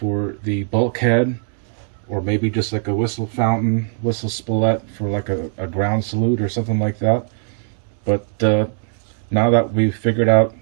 the bulkhead, or maybe just like a whistle fountain, whistle spoulette for like a ground salute or something like that. But now that we've figured out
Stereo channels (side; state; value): left; silent; digital silence